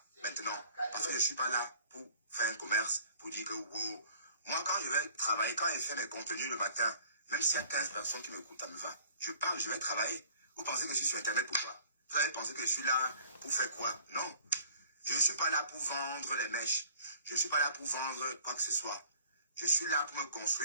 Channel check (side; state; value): both; inverted; correlation -0.52